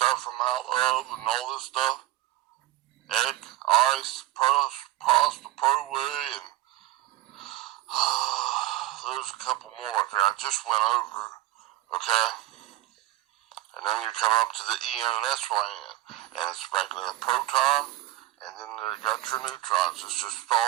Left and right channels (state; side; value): quieter; left; 16.0 dB